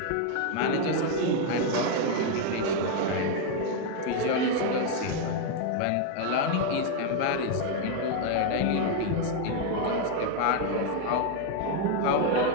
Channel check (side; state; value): both; different; correlation 0.01